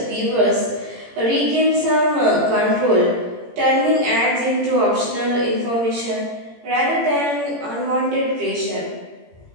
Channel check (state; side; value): late; left; 17 ms